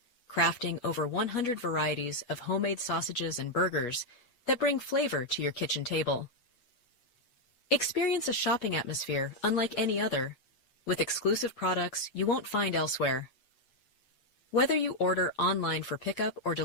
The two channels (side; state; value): right; late; 7.9 ms